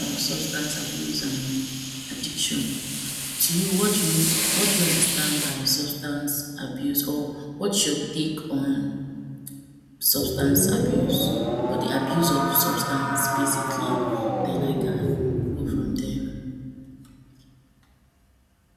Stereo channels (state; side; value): identical; both; correlation 1.00